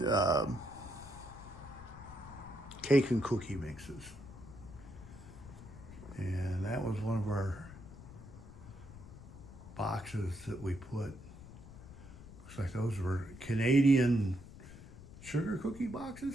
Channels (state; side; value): noise; left; rumble, 16 dB below the sound